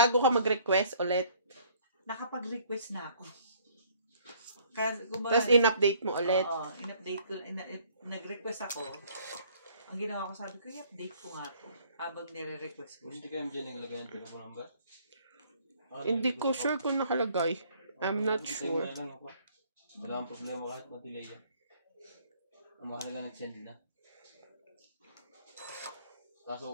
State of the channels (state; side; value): inverted; both; correlation -0.59